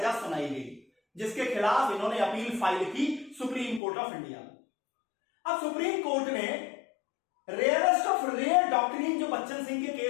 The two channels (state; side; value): drops out; right; at 3.8 s